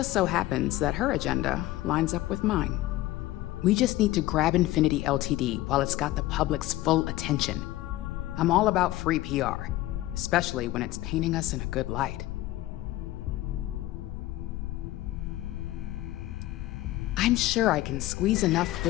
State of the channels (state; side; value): quieter; right; 16.5 dB